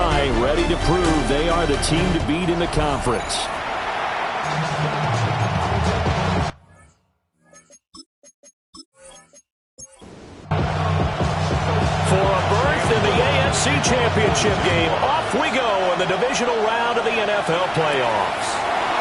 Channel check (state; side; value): identical; both; correlation 1.00